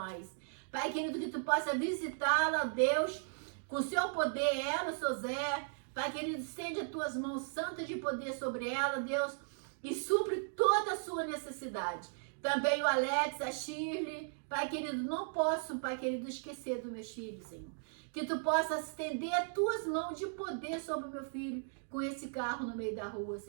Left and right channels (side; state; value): left; silent; digital silence